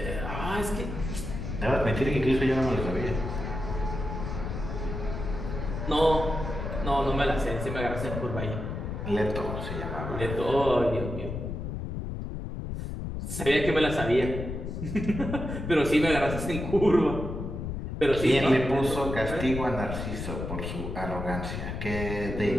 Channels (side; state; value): left; noise; rumble, 5 dB below the sound